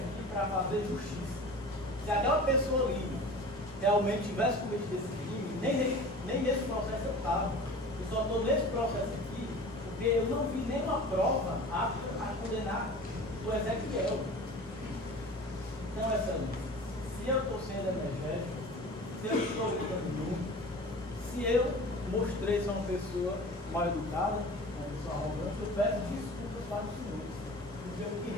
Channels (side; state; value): both; normal; correlation 0.39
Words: para fazer justiça. Se aquela pessoa ali realmente tivesse cometido esse crime, nem nesse processo eu estava. Eu só estou nesse processo aqui porque eu não vi nenhuma prova apta a condenar o Ezequiel. Então, se eu estou sendo energético, se eu estou gritando muito, se eu mostrei ser uma pessoa mal educada, uma pessoa arrogante, eu peço desculpas para os senhores. Porque o que